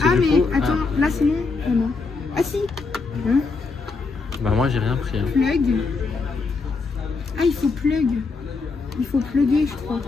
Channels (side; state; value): right; quieter; 4.2 dB